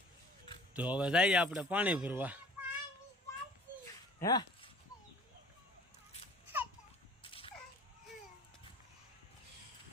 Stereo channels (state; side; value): normal; both; correlation 0.49